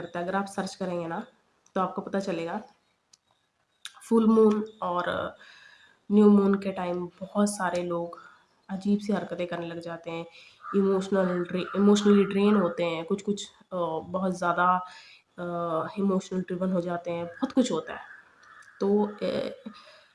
है, अगर आप सर्च करेंगे ना तो आपको पता चलेगा। फुल मून और न्यू मून के टाइम बहुत सारे लोग अजीब सी हरकतें करने लग जाते हैं, इमोशनली ड्रेन होते हैं, कुछ कुछ बहुत ज़्यादा इमोशनल ड्रिवन हो जाते हैं, बहुत कुछ होता है। तो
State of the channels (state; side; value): identical; both; correlation 1.00